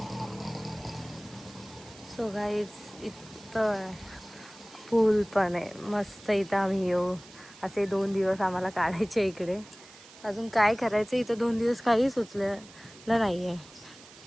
सो गाईज इथं पूल पण आहे मस्त. इथं आम्ही येऊ असे 2 दिवस आम्हाला काढायचे इकडे. अजून काय करायचं इथं 2 दिवस काही सुचलेलं नाही आहे.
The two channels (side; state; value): right; noise; hiss, 20 dB below the sound